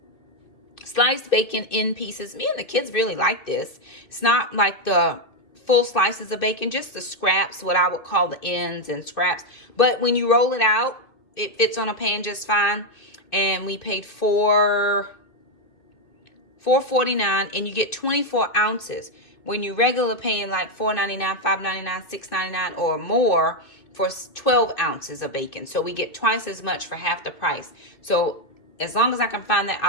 Sliced bacon in pieces. Me and the kids really like this. It's not like the full slices of bacon, just the scraps, what I would call the ends and scraps. But when you roll it out, it fits on a pan just fine. And we paid $4.49 and you get 24 ounces. When you regular paying like $4.99, $5.99, $6.99 or more for 12 ounces of bacon. So we get twice as much for half the price. So as long as I can find that,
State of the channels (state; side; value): late; right; 2.6 ms